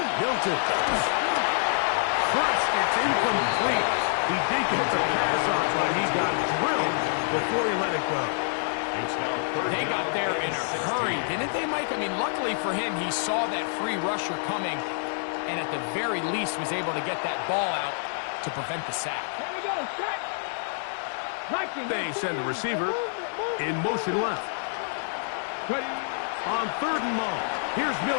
Milton. Crushed, it's incomplete. He did get the pass off, but he got drilled before he let it go. They got there in a hurry, didn't they, Mike? I mean, luckily for him, he saw that free rusher coming and at the very least was able to get that ball out to prevent the sack. Here we go, set. They send the receiver in motion left. Ready. On 3rd and long, here's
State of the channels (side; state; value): right; silent; 60 dB below the other